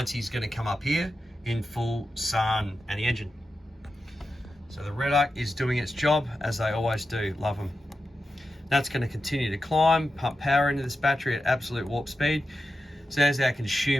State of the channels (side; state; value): both; normal; correlation 0.90